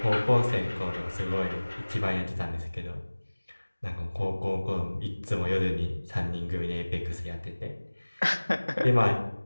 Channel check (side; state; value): both; inverted; correlation -1.00